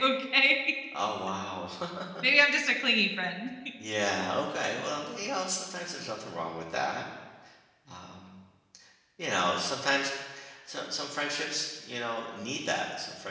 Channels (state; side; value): identical; both; correlation 1.00